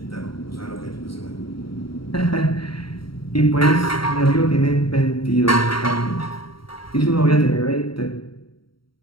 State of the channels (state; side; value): late; right; 0.74 ms